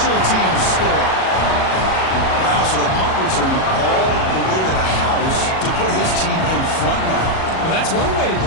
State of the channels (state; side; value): late; right; 37 ms